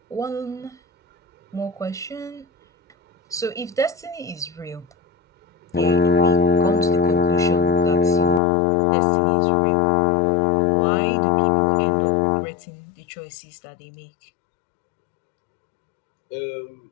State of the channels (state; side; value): drops out; right; at 8.4 s